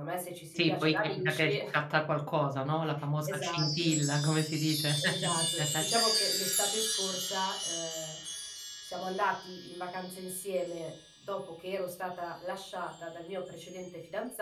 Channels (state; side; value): identical; both; correlation 1.00